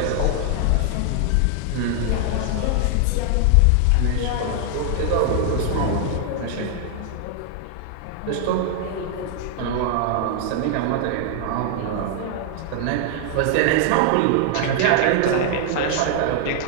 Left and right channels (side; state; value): both; different; correlation 0.00